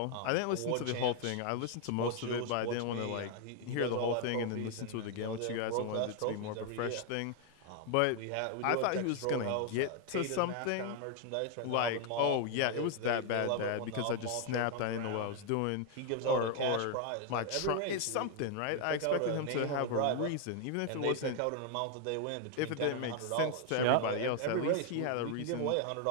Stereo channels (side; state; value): both; different; correlation 0.00